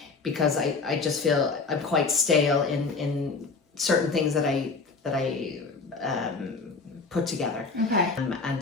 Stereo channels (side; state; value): right; quieter; 4.3 dB